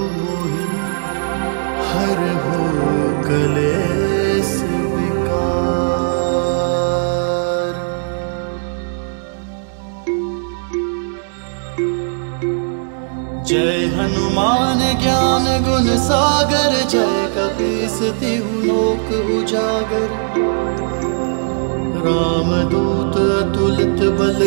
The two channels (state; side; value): silent; left; digital silence